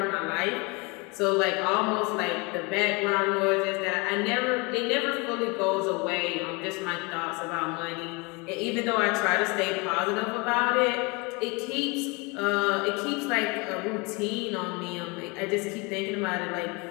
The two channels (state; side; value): quieter; right; 28.3 dB